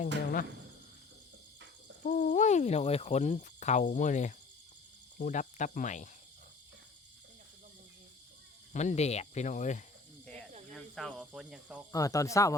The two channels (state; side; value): quieter; right; 4.0 dB